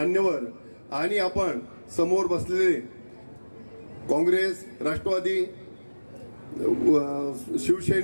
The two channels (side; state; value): both; inverted; correlation -1.00